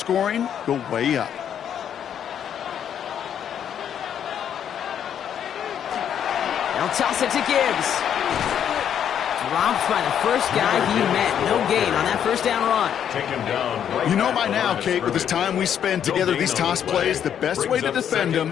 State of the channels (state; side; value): quieter; right; 9.1 dB